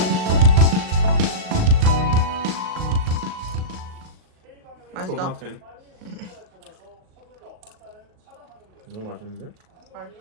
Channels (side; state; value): left; late; 38 ms